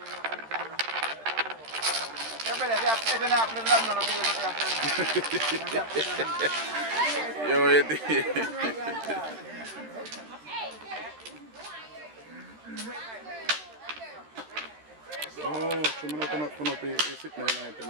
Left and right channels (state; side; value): late; left; 13 ms